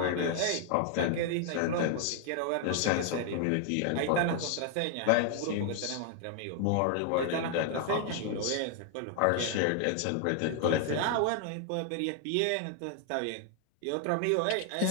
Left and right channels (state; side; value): different; both; correlation 0.00